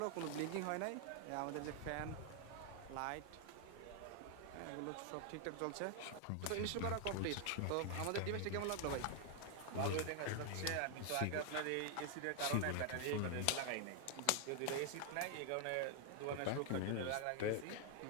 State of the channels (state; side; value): different; both; correlation 0.00